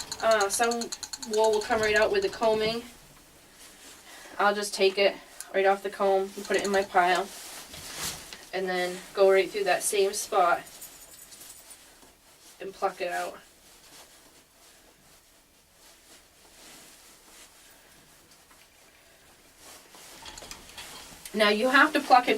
Some wool will come right out with the combing. I'll just take it right off the comb and put it in my pile. And then go right through that same spot and pluck it out. Now you have to pluck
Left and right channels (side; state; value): both; identical; correlation 1.00